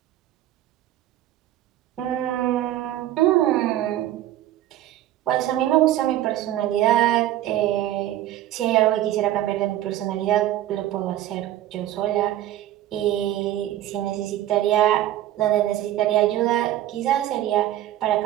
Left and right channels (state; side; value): quieter; left; 13.4 dB